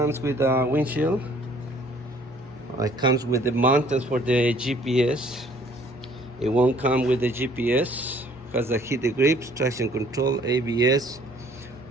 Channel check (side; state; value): both; normal; correlation 0.58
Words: with a windshield. It comes with the mountains for the GPS. It won't come with the GPS. Has a heated grips, traction control, ABS.